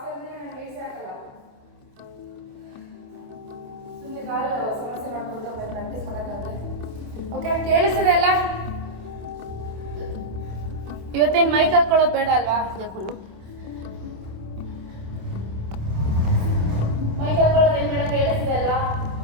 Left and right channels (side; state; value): left; late; 27 ms